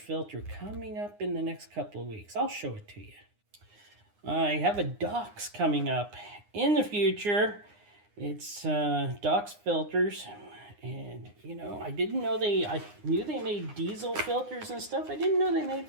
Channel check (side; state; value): left; late; 9.7 ms